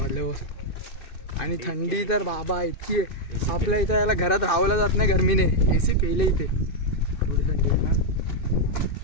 बस. आणि थंडी तर बाबा इतकी आहे. आपल्या इथं याला घरात राहावलं जात नाही गरमीने. एसी केले इथे एवढी थंडी आहे.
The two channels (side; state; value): right; late; 2.6 ms